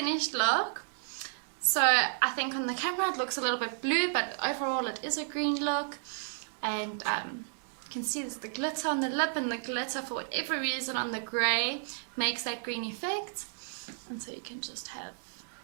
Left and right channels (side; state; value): left; silent; digital silence